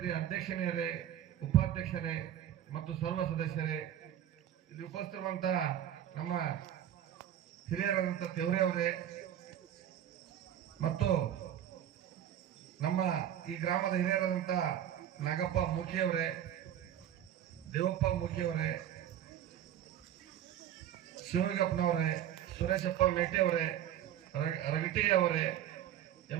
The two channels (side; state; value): left; quieter; 11.0 dB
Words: ಅಧ್ಯಕ್ಷರೇ, ಉಪಾಧ್ಯಕ್ಷರೇ ಮತ್ತು ಸರ್ವ ಸದಸ್ಯರೇ, ಇಲ್ಲಿ ಉಪಸ್ಥಿತಿರುವಂತಹ ನಮ್ಮ ಹಿರಿಯರಾದಂಥ ತೆವರೆ ಅವರೇ ಮತ್ತು ನಮ್ಮ ಈ ಗ್ರಾಮದ ಹಿರಿಯರಾದಂಥ ನಾಗಪ್ಪ ಮೂಕಿಯವರೇ, ದೇವಪ್ಪ ಮೂಕಿಯವರೇ, ಶಿವಗಪ್ಪನವರೇ, ಸುರೇಶಪ್ಪ ಮೇಟಿ ಅವರೇ, ರಗಟಿ ಅವರೇ,